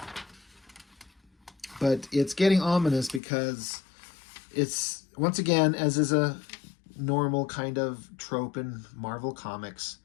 But it's getting ominous because it's, once again, as is a normal kind of trope in Marvel Comics,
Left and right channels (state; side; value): drops out; right; at 3.2 s